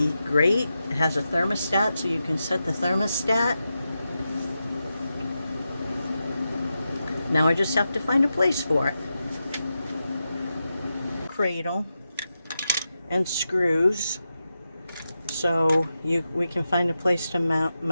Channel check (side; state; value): both; inverted; correlation -0.89